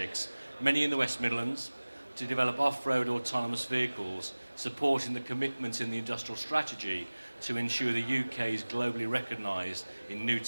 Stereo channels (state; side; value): inverted; both; correlation -1.00